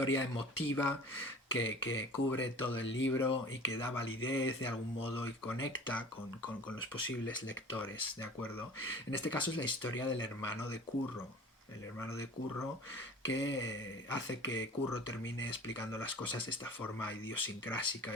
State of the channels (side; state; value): both; normal; correlation 0.43